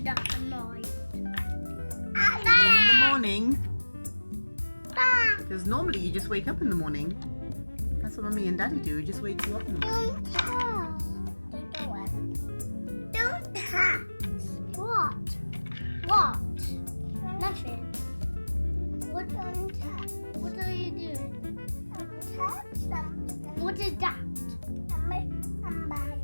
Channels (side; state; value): both; inverted; correlation -1.00